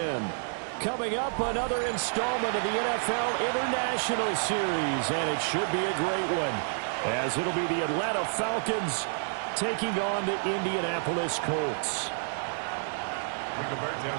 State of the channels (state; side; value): silent; left; digital silence